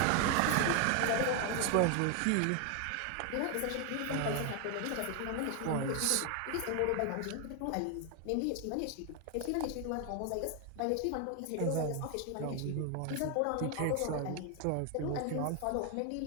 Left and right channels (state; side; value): different; both; correlation 0.01